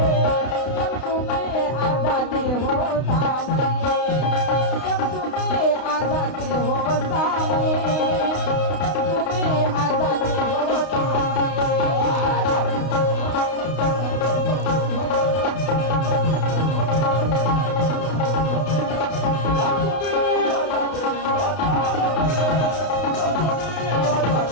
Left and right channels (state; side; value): late; right; 32 ms